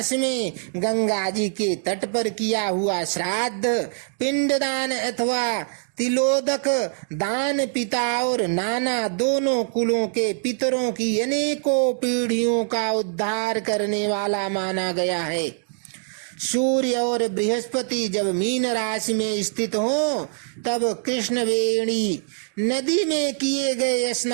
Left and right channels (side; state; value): left; silent; digital silence